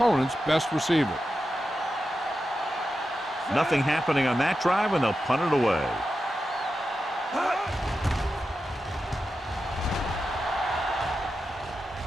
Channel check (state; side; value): normal; both; correlation 0.90